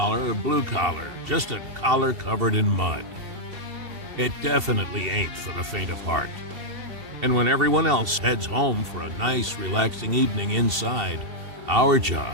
or blue collar, just a collar covered in mud. It definitely ain't for the faint of heart. And when everyone else heads home for a nice, relaxing evening inside, our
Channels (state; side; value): late; left; 2.7 ms